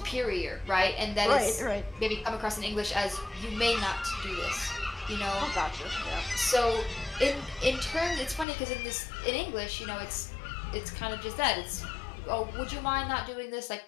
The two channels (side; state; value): right; drops out; at 8.5 s